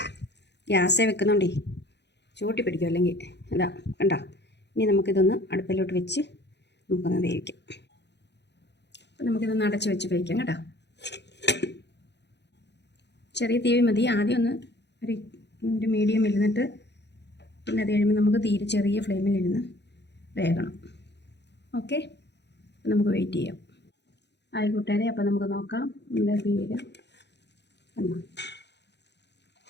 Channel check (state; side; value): late; right; 0.50 ms